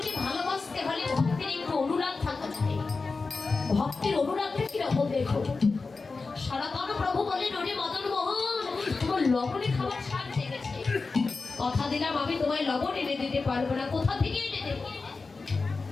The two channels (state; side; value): quieter; right; 4.1 dB